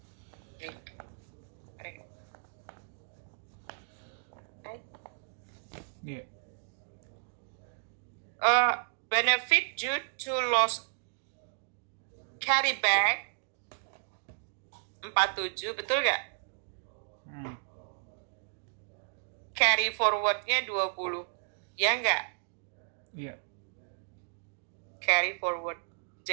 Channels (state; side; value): silent; left; digital silence